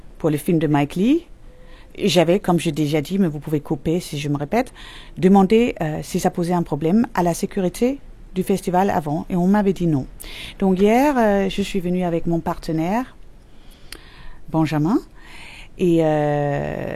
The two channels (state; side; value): identical; both; correlation 1.00